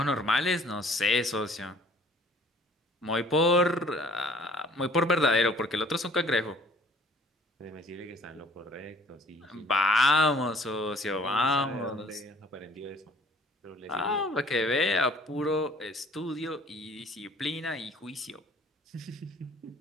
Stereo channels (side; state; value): both; normal; correlation 0.55